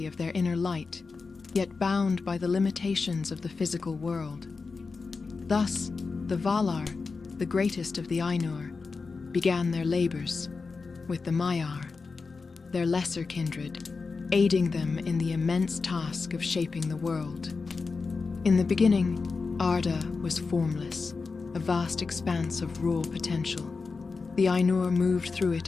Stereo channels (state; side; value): quieter; right; 4.4 dB